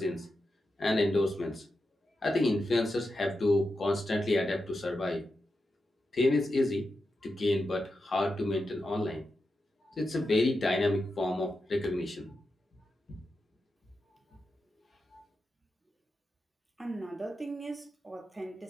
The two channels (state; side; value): normal; both; correlation 0.88